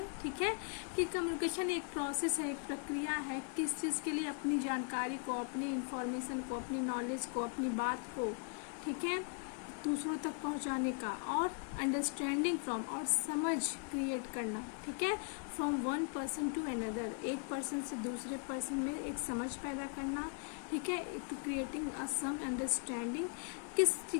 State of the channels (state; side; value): quieter; right; 39.5 dB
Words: ठीक है, कि कम्युनिकेशन एक प्रोसेस है, एक प्रक्रिया है, किस चीज़ के लिए, अपनी जानकारी को, अपनी इंफॉर्मेशन को, अपनी नॉलेज को, अपनी बात को, ठीक है, दूसरों तक पहुंचाने का, और अंडरस्टैंडिंग फ्रॉम, और समझ क्रिएट करना, ठीक है, from one person to another, एक पर्सन से दूसरे पर्सन में एक समझ पैदा करना, ठीक है, to creating a some understanding.